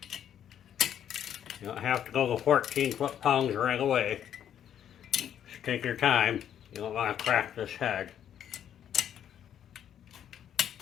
You don't have to go the 14 foot-pounds right away. Just take your time. You don't want to crack this head.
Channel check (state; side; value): quieter; right; 9.7 dB